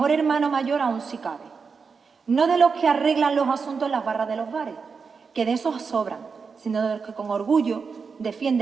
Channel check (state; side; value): quieter; left; 5.3 dB